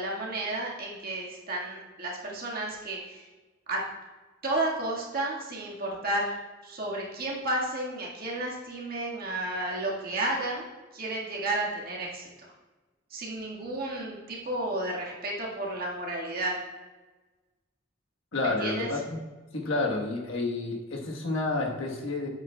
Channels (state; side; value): normal; both; correlation 0.04